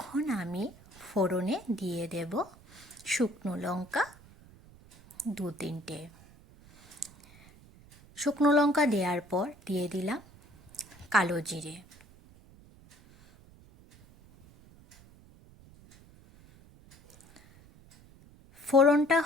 আমি ফোড়নে দিয়ে দেব শুকনো লঙ্কা 2-3টে। শুকনো লঙ্কা দেওয়ার পর দিয়ে দিলাম কালো জিরে। ফোড়নটা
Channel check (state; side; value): noise; right; rumble, 24 dB below the sound